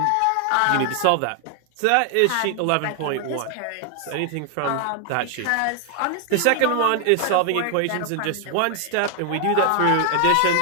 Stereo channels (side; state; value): both; different; correlation 0.00